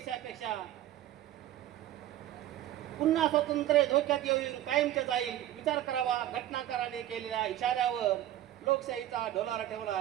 पुन्हा स्वातंत्र्य धोक्यात येऊन कायमचे जाईल. विचार करावा घटनाकाराने केलेल्या इशाऱ्यावर. लोकशाहीचा डोलारा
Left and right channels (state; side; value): quieter; left; 13.2 dB